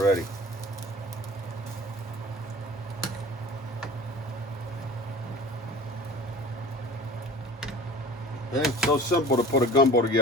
Okay, it's so simple to put a gumbo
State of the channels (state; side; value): normal; both; correlation 0.39